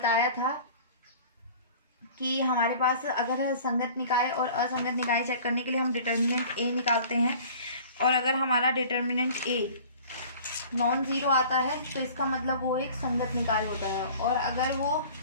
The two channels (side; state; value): both; inverted; correlation -0.45